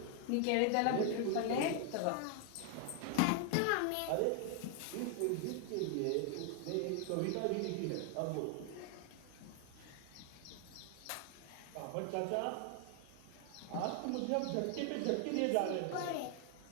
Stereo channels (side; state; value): both; different; correlation 0.00